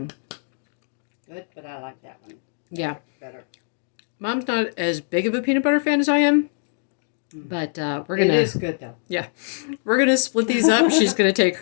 Good, but I like that one. Yeah. Better. Mom's not as big of a peanut butter fan as I am. But we're going to... It is good, though. Yeah. We're going to split these up. She's going to take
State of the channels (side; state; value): right; silent; digital silence